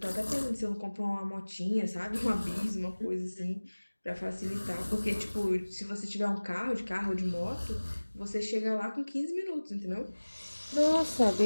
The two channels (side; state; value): both; inverted; correlation -1.00